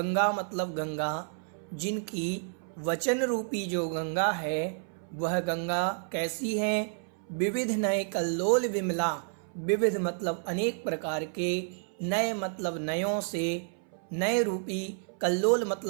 मतलब गंगा, जिनकी वचन रूपी जो गंगा है वह गंगा कैसी है? विविध नए कल्लोल विमला, विविध मतलब अनेक प्रकार के, नए मतलब नयों से, नए रूपी, कल्लोल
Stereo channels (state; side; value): silent; left; 58 dB below the other